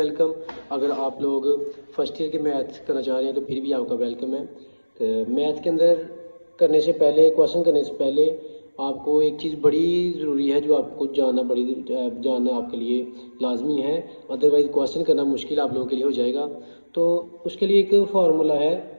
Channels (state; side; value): inverted; both; correlation -1.00